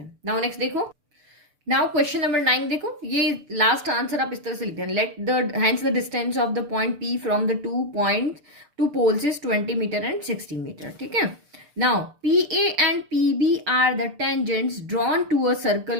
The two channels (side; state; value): left; late; 6.7 ms